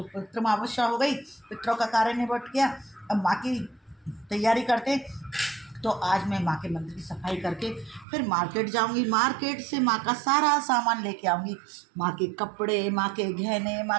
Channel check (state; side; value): drops out; left; at 8.1 s